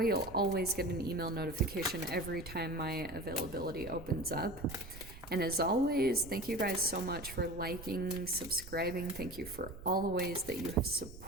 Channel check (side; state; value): right; noise; rumble, 15 dB below the sound